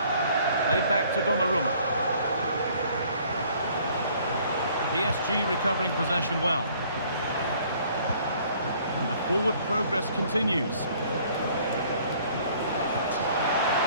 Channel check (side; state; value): both; inverted; correlation -0.58